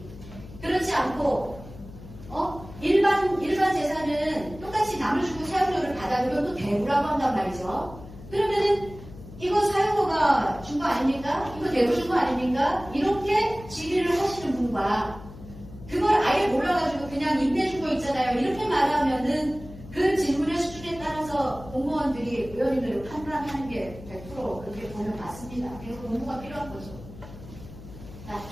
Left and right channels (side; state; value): left; noise; hum, 16 dB below the sound